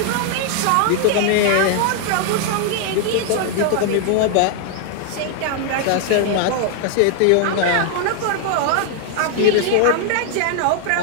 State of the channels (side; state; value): both; different; correlation 0.00